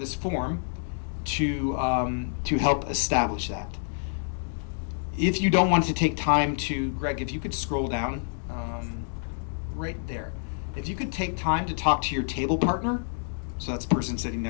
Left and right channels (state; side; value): silent; right; digital silence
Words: form to help establish that. If you don't want to take time to, Greg, if you could scroll down right there. If you could take time to talk to your table partner, so that's the person sitting